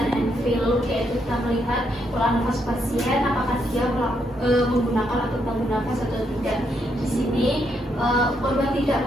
and feel, yaitu kita melihat pola nafas pasien apakah dia menggunakan otot bantu nafas atau tidak. Di sini korban tidak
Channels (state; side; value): normal; both; correlation 0.77